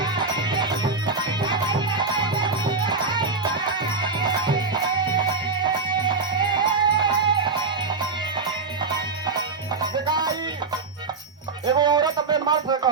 दिखाई एगो औरत अपने मर्द से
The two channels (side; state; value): left; quieter; 4.1 dB